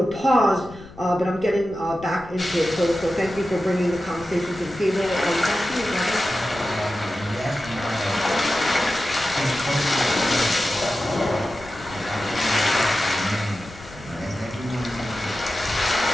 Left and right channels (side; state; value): left; noise; rumble, 18 dB below the sound